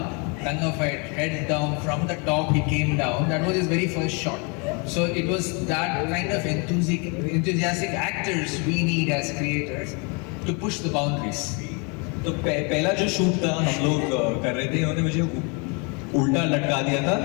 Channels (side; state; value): right; quieter; 32.8 dB